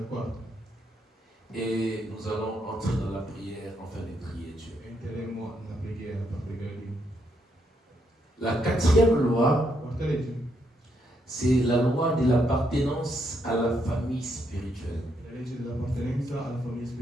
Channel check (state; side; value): normal; both; correlation 0.77